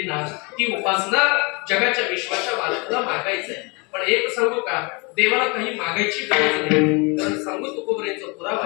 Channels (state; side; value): quieter; right; 29.4 dB